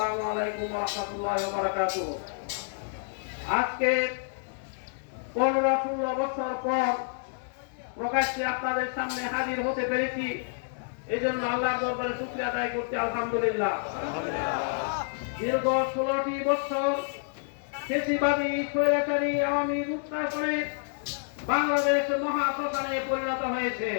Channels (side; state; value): right; silent; digital silence